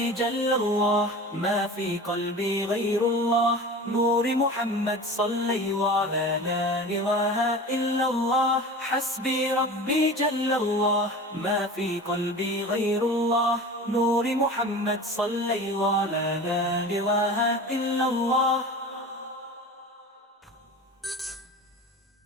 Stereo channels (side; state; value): both; normal; correlation 0.35